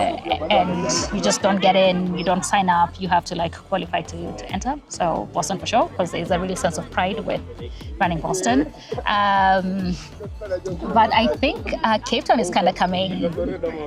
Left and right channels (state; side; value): identical; both; correlation 1.00